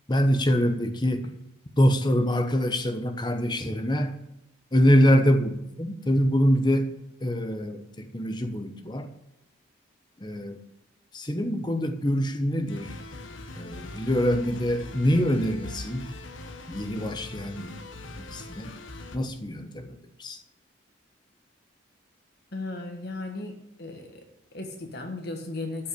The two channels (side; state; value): both; normal; correlation 0.86